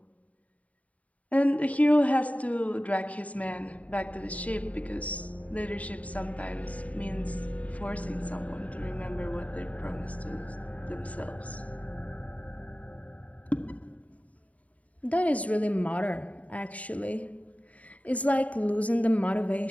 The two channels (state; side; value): late; right; 0.069 ms